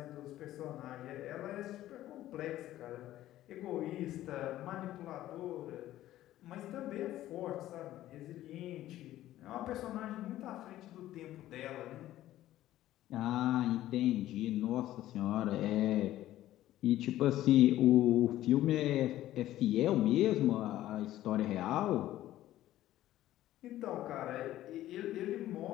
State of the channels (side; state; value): right; quieter; 14.1 dB